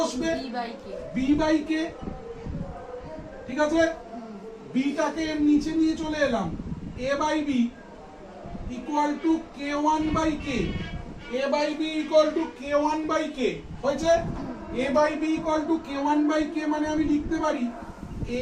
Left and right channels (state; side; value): identical; both; correlation 1.00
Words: b বাই k। ঠিক আছে, b টাকে নিচে নিয়ে চলে এলাম, a by b equal to k1 by k, a by b equal to k1 by k হয়েছে a by b equal to k1 by k মানে আমি লিখতে পারি